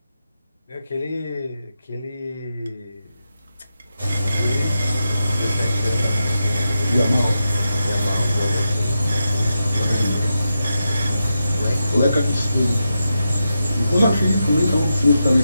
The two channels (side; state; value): both; inverted; correlation -0.88